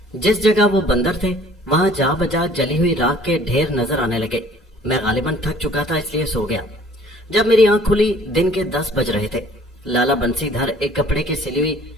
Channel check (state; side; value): normal; both; correlation 0.54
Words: जिस जगह वो बंदर थे वहां जा बजा जली हुई राख के ढेर नजर आने लगे। मैं गालिबन थक चुका था इसलिए सो गया। जब मेरी आंख खुली दिन के 10 बज रहे थे। लाला बंसीधर एक कपड़े की सिली हुई